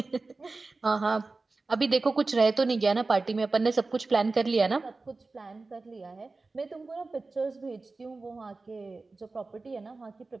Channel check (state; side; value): quieter; left; 3.6 dB